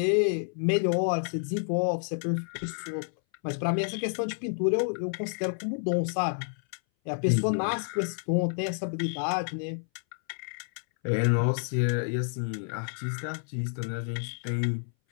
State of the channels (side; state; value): right; silent; 58 dB below the other